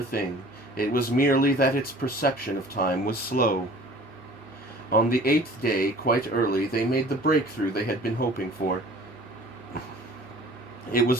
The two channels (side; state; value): both; normal; correlation 0.47